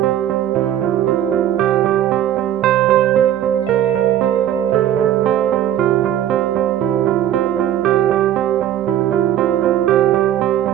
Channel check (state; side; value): quieter; left; 11.4 dB